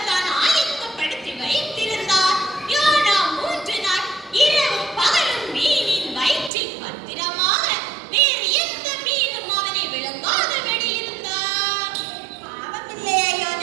தான் ஆயத்தப்படுத்தி வைத்திருந்தார். யோனா 3 நாள் இரவும் பகலும் மீனின் வயிற்றில் பத்திரமாக வேறு எந்த மீனும் அவனை விழுங்காதபடி இருந்தார். பாவமில்லையா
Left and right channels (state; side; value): drops out; left; at 6.5 s